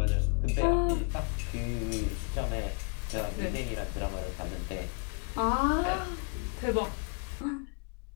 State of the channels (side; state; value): right; quieter; 35.2 dB